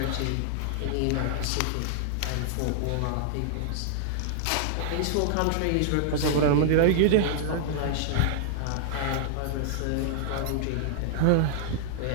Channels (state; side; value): different; both; correlation -0.01